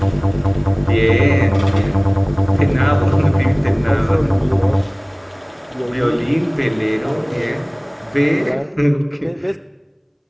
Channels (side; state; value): both; identical; correlation 1.00